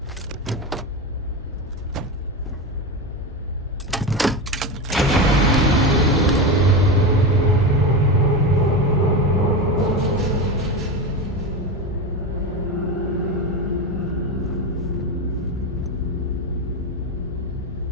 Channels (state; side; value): normal; both; correlation 0.19